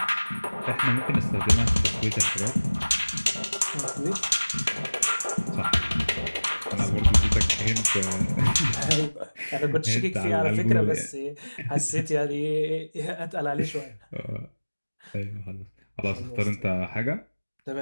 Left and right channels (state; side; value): inverted; both; correlation -1.00